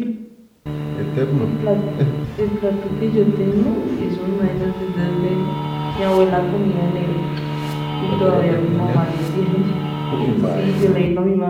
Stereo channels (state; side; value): identical; both; correlation 1.00